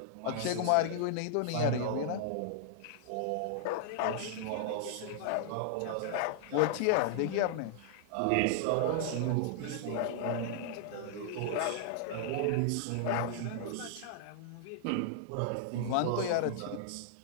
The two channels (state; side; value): different; both; correlation -0.01